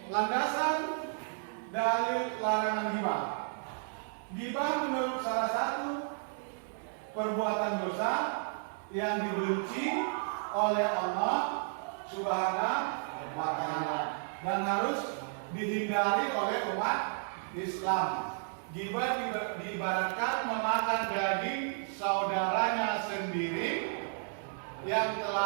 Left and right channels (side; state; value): left; silent; 56 dB below the other